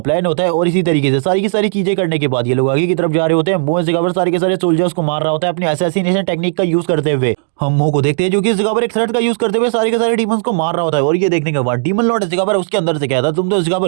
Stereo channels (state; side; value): silent; left; digital silence